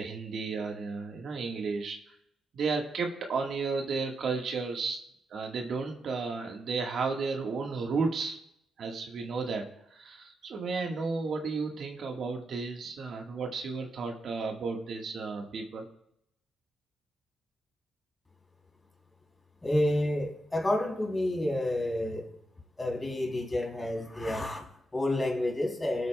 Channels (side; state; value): both; normal; correlation 0.85